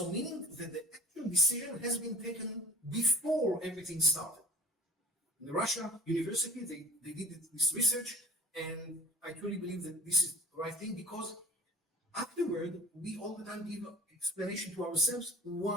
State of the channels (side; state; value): both; normal; correlation 0.44